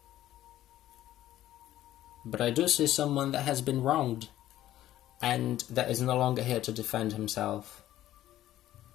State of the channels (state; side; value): quieter; right; 13.5 dB